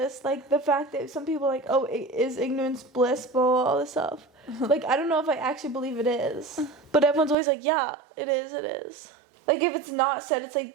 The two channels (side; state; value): left; drops out; at 7.4 s